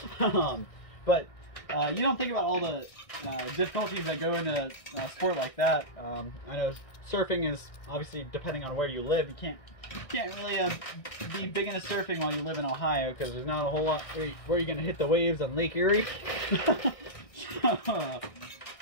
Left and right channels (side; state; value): right; late; 1.6 ms